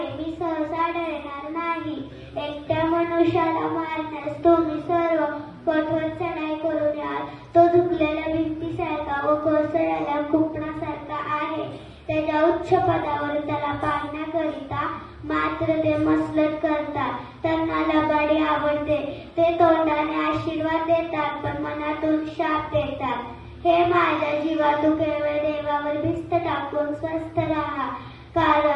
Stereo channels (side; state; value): both; identical; correlation 1.00